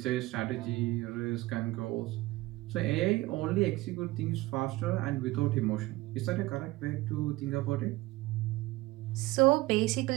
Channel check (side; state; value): left; quieter; 19.3 dB